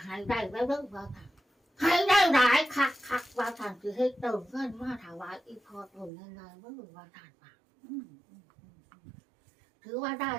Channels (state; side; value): drops out; left; at 6.1 s